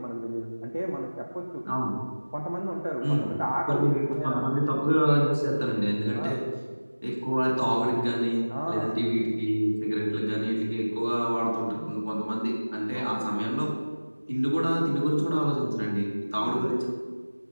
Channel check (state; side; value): inverted; both; correlation -1.00